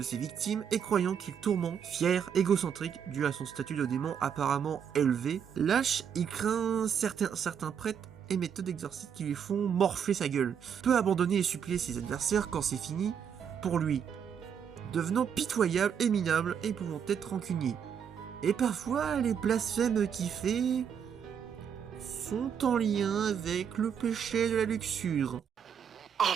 ses victimes et croyant qu'il tourmente, fier, égocentrique, dû à son statut de démon apparemment élevé. Lâche, il craint certains prêtres et méthodes d'exorcisme qui lui font morfler sa gueule. Peut abandonner et supplier ses adversaires quand c'est fini pour lui, devenant pitoyable et minable et pouvant être rancunier. Et parfois, les blasphèmes qu'il fait sont en lien avec le péché de la luxure.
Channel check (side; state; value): left; quieter; 7.8 dB